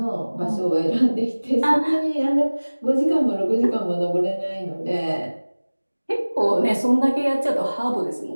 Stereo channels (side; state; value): both; inverted; correlation -1.00